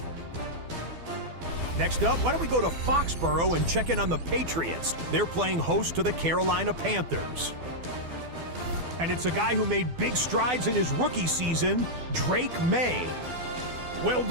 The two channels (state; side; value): late; left; 12 ms